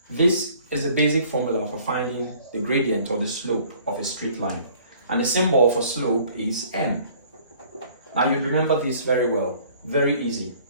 This is the basic formula for finding the gradient or the slope of a straight line. And the symbol for slope is m. Now you remember this very well. Very easy.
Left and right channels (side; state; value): both; inverted; correlation -0.55